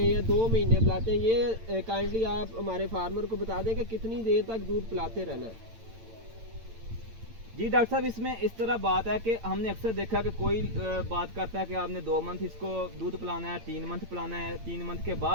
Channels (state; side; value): late; left; 8.9 ms